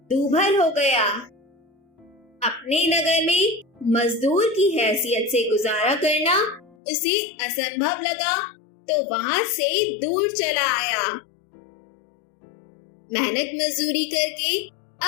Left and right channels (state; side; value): drops out; right; at 6.8 s